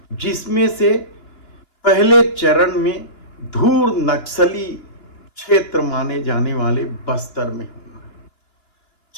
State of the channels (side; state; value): right; late; 2.9 ms